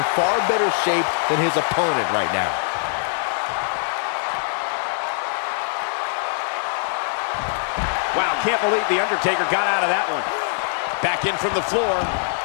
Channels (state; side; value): silent; right; 64 dB below the other